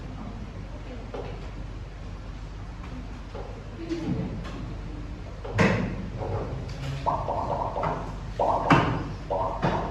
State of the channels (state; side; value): identical; both; correlation 1.00